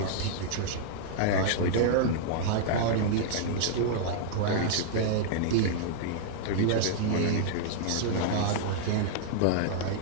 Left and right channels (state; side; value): different; both; correlation -0.01